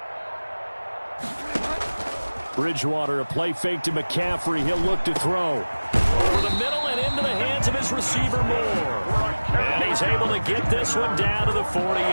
Bridgewater, a play fake to McCaffrey. He'll look to throw. Over the middle and into the hands of his receiver, Moore. And he's able to get this one down to the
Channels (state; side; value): inverted; both; correlation -1.00